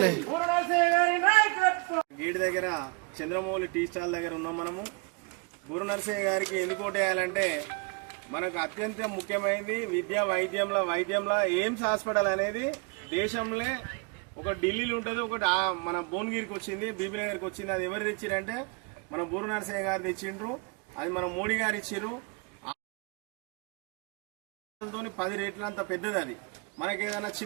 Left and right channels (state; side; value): quieter; left; 31.2 dB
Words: గేట్ దగ్గర చంద్రమౌళి టీ స్టాల్ దగ్గర ఉన్నాం మనము. బూర నరసయ్య గారికి ఎందుకు ఓటేయాలంటే మనకు అత్యంత ముఖ్యమైనది విద్య వైద్యంలో ఎయిమ్స్ హాస్పిటల్ అనేది దేశంలో ఒక ఢిల్లీలో ఉంటుంది, ఒకటి మన భువనగిరికి వచ్చింది, బీబీనగర్కి వచ్చింది. అది ఎవరు తెచ్చిరంటే మన బూర నరసయ్య గారు తెచ్చిండ్రు. అది మన మోడీ గారు ఇచ్చిర్రు. 10 రేట్ల అంత పెద్దది. అది మనకి ఏదైనా